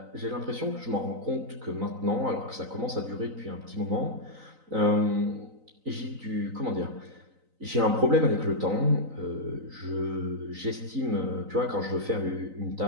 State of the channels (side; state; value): left; late; 3.9 ms